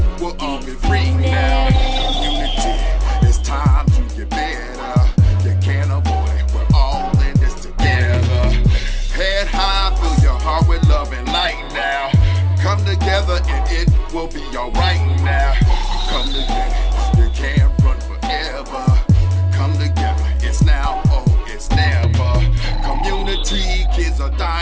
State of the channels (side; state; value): both; identical; correlation 1.00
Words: will all be free now. Community, it's time to get better. You can't avoid it, we're all in this together. Head high, fill your heart with love and light now. Come together and it will be alright now. Come together, you can't run forever. Come together, it's now or it's never. Community, kids are